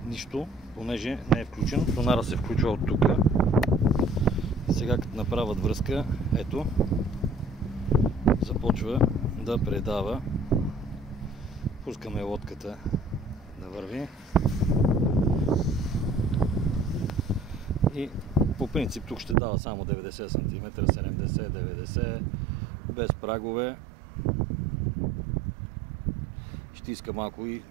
Нищо, понеже не е включен. Сонара се включва от тук. Сега като направят връзка, ето, започва да предава. Пускаме лодката да върви. И по принцип тук ще дава само 90 см, 70-90, без прагове. Ще иска малко и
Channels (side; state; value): left; drops out; at 19.4 s